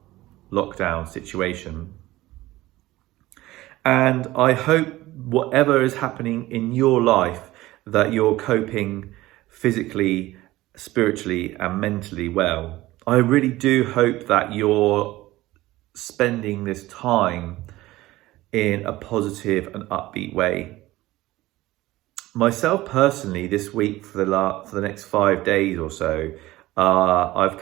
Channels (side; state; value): left; quieter; 17.5 dB